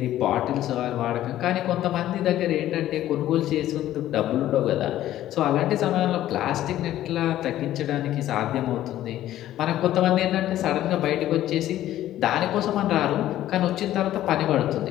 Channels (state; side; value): quieter; right; 13.3 dB